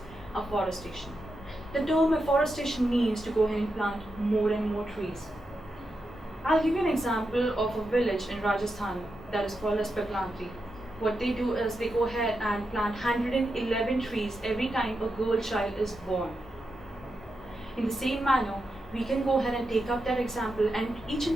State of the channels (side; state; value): both; normal; correlation 0.87